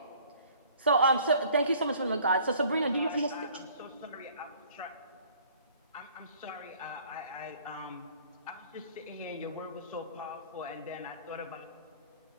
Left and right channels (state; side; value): inverted; both; correlation -0.54